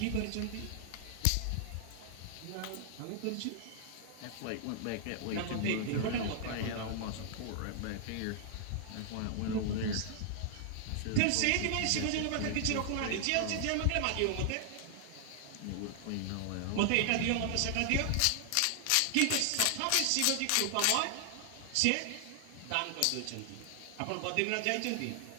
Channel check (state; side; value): different; both; correlation 0.00